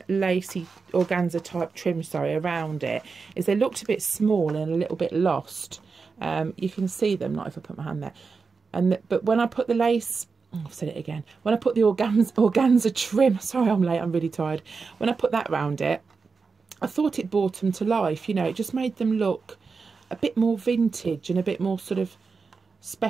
lacy organza type trim, around it is they looked a bit small and a little bit lost. You can see them, not if I put my hand there. But when I put the lace, I've said it again, when I put the organza trim, sorry I'm late, I'm really tired. When I put that round it, I thought it brought them to life, you know, it just made them look a bit more vintage and a bit more sort of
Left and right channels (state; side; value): quieter; left; 4.8 dB